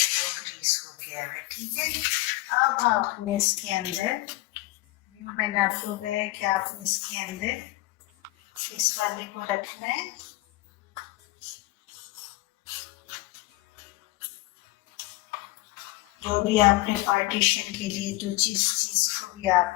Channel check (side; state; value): right; quieter; 19.7 dB